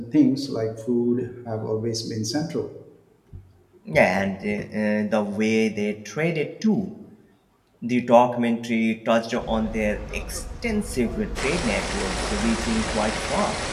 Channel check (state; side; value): identical; both; correlation 1.00